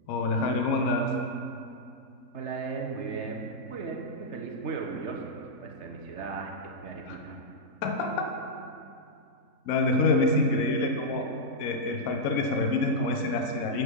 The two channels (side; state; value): right; late; 4.1 ms